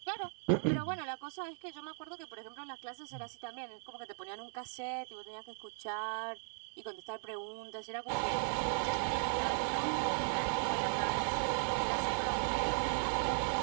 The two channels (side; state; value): left; silent; 53 dB below the other